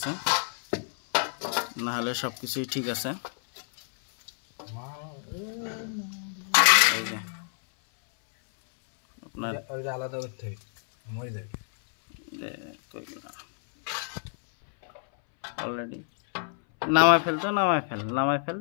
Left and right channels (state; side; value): silent; right; 59 dB below the other